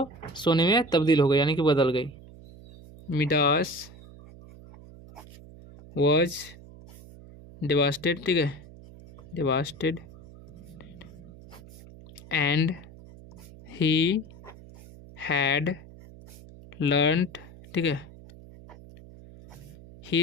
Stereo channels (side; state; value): right; noise; hum, 19 dB below the sound